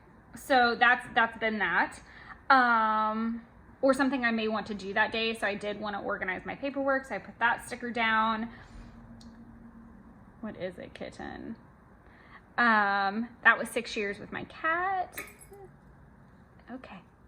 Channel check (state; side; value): identical; both; correlation 1.00